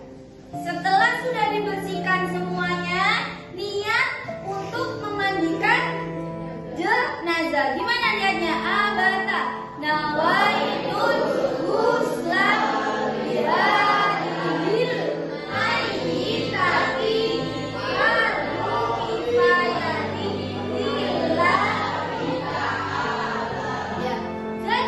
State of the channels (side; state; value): both; identical; correlation 1.00